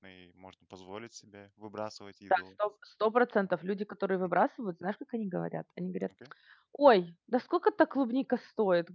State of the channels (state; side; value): identical; both; correlation 1.00